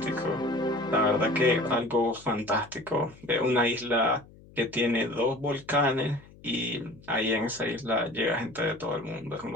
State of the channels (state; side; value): noise; left; hum, 23 dB below the sound